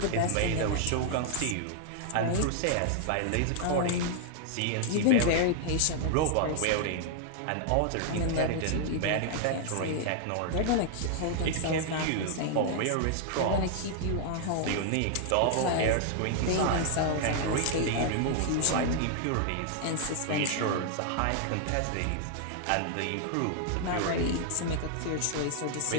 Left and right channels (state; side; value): different; both; correlation 0.00